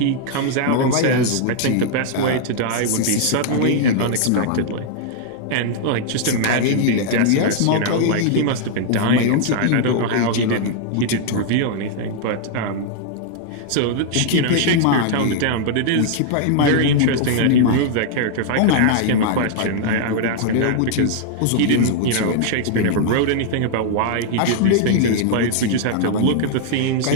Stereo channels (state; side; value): different; both; correlation -0.01